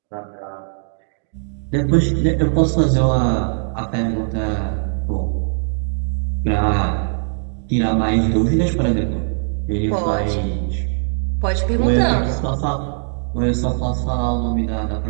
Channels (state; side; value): silent; left; digital silence